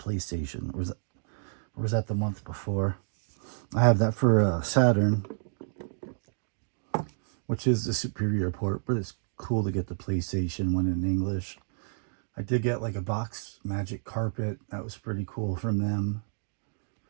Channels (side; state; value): left; silent; digital silence